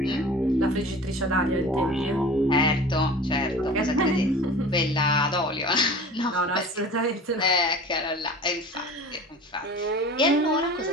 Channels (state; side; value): normal; both; correlation 0.39